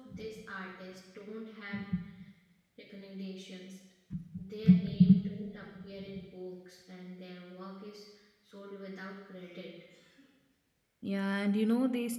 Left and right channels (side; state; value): both; identical; correlation 1.00